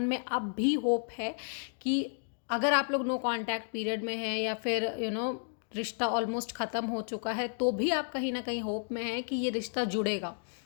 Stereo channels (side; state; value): right; silent; digital silence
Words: में अब भी होप है कि अगर आप लोग नो कांटेक्ट पीरियड में हैं या फिर रिश्ता ऑलमोस्ट ख़त्म हो चुका है, तो भी आप कहीं ना कहीं होप में हैं कि ये रिश्ता जुड़ेगा,